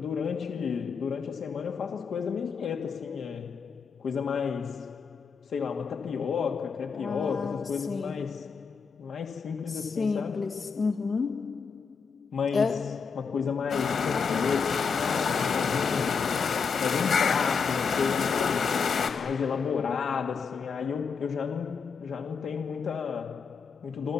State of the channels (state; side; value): quieter; right; 5.7 dB